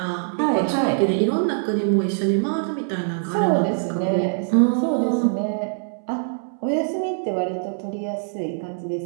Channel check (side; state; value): left; silent; 63 dB below the other